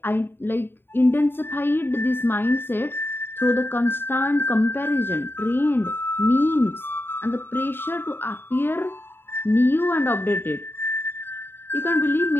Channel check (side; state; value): right; late; 0.11 ms